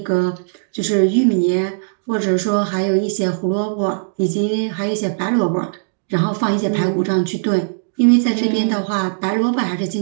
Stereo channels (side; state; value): left; silent; digital silence